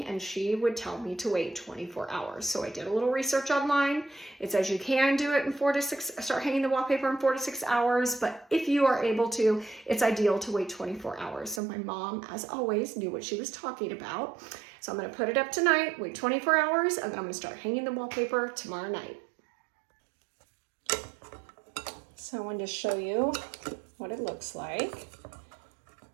and she would tell me to wait 24 hours. So I did a little research online. It says you can do it in 4 to 6, start hanging the wallpaper in 4 to 6 hours, but if you are able to, it's ideal to wait 24 hours. So my mom, as always, knew what she was talking about. So I'm gonna put it up tonight, wait 24 hours, and then I'm gonna start hanging the wallpaper tomorrow night. So I wanted to show you what it looks like.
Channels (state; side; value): drops out; left; at 11.6 s